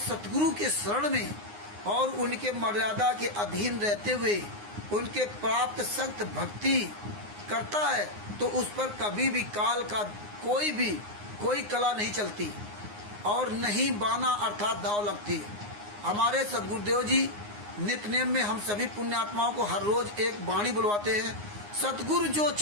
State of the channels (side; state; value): left; late; 9.7 ms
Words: के शरण में और उनके मर्यादा के अधीन रहते हुए उनके प्राप्त सख्त भक्ति करता है तो उस पर कभी भी काल का कोई कला नहीं चलती और नहीं बाना अर्थात दाव लगती। हमारे सदगुरुदेव जी नित्य नेम में हम सभी पुण्यात्माओं को हर रोज एक वाणी बुलवाते हैं, सतगुरु जो